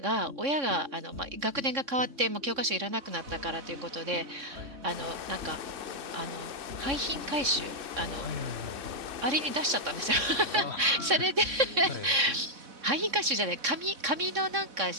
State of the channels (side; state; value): left; late; 3.6 ms